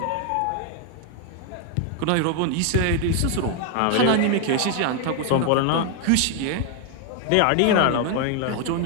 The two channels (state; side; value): different; both; correlation 0.00